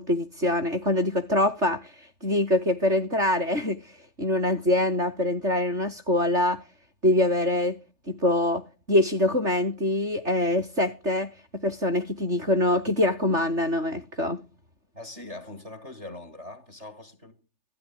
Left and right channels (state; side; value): late; left; 3.4 ms